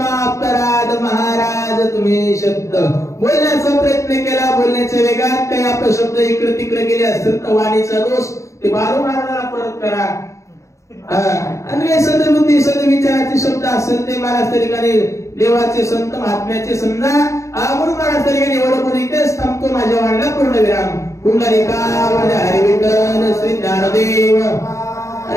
अपराध महाराज तुम्ही शब्द बोलण्याचा प्रयत्न केला बोलण्याच्या वेगात काही अपशब्द इकडे तिकडे गेले असतील तर वाणीचा दोष ते बाळू महाराजाला परत करा आणि सदबुद्धी सदविचाराचे शब्द असेल ते महाराज तरीकाने देवाचे संत महात्म्याचे समजा म्हणून महाराज तरीकाने एवढं बोलून इथेच थांबतो माझ्या वाणीला पूर्णविराम पुंडलिकावरती हरी विठ्ठल श्री ज्ञानदेव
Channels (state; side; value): late; right; 0.15 ms